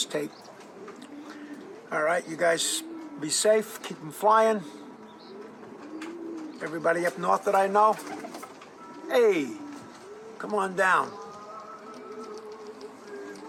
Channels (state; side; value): identical; both; correlation 1.00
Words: tape. All right, you guys be safe. Keep them flying. Everybody up north that I know, hey, come on down.